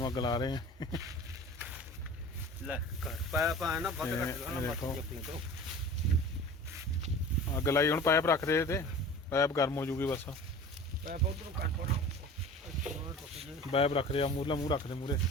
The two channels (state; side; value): normal; both; correlation 0.40